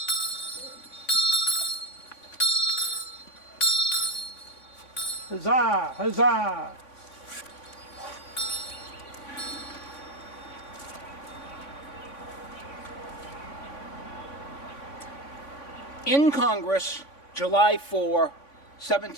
Huzzah! Huzzah! In Congress, July 4,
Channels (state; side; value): late; right; 3.5 ms